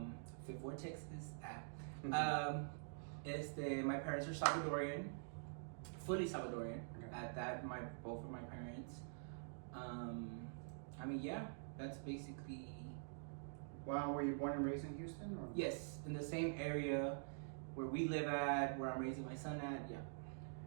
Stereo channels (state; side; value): silent; left; digital silence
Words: Fifth Ward, Texas. My parents are Salvadorian, fully Salvadorian. Okay. At that, both of my parents. That's basically. Well, were you born and raised in Houston? Or? Yes, in the same area where we live at, where I'm raising my son at. Yeah.